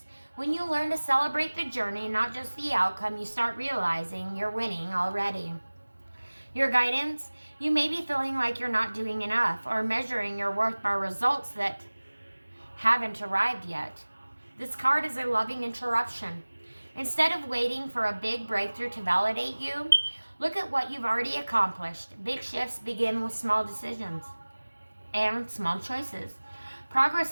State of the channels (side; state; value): both; inverted; correlation -1.00